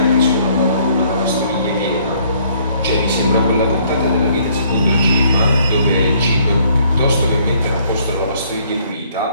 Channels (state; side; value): inverted; both; correlation -0.63